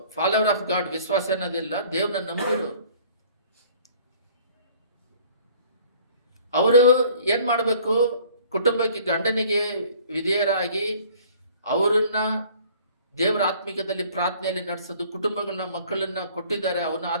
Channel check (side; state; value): both; inverted; correlation -0.53